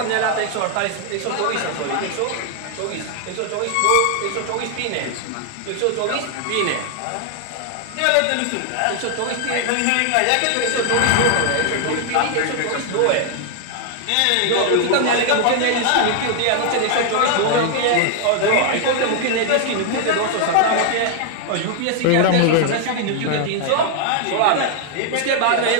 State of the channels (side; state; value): both; different; correlation 0.00